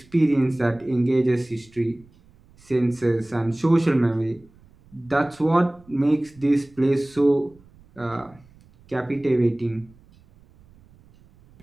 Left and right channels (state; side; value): noise; right; rumble, 28 dB below the sound